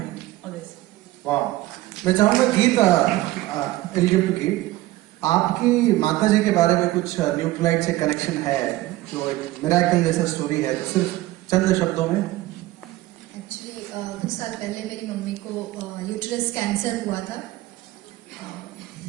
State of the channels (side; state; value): left; quieter; 17.2 dB